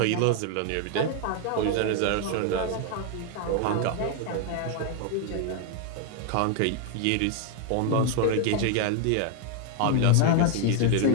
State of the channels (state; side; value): different; both; correlation 0.01